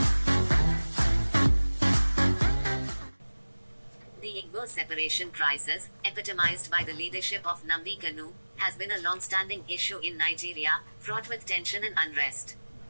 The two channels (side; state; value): both; inverted; correlation -1.00